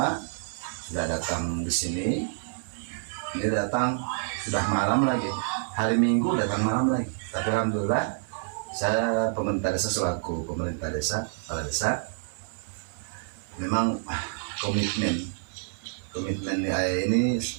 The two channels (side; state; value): left; silent; digital silence